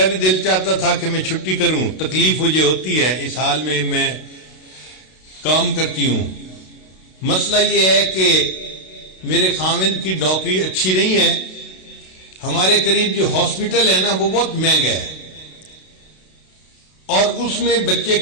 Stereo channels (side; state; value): right; late; 32 ms